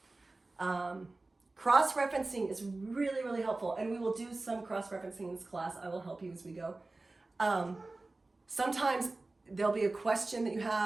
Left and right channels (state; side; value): quieter; left; 3.2 dB